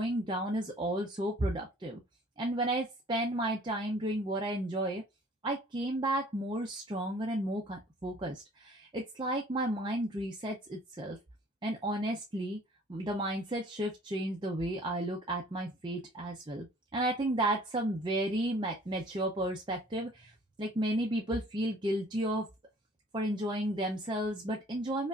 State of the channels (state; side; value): normal; both; correlation 0.54